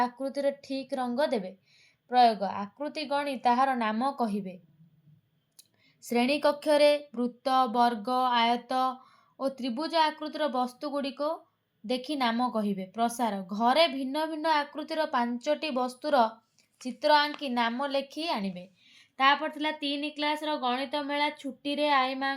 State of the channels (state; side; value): identical; both; correlation 1.00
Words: ठीक रंग देबे। प्रयोग आकृति गणी ताहार नाम कहिबे। श्रेणी कक्ष रे वृत्त वर्ग आयत और त्रिभुज आकृतिर वस्तु गुड़िक देखि नाम कहिबे। प्रसार घरे भिन्न भिन्न आकृतिर 5टी वस्तुर चित्र आंकी नाम लेखि आनिबे। तापर थिला 3 क्लास रो गणित मेला छुट्टी रे आई